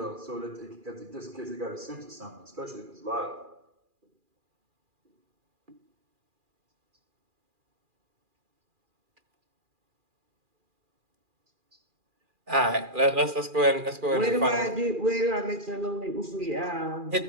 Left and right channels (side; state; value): left; late; 2.4 ms